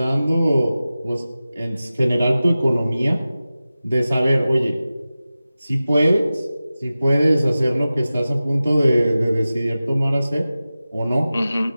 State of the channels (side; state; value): both; inverted; correlation -0.95